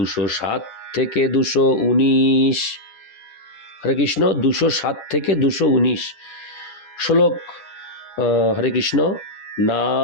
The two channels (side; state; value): right; late; 10 ms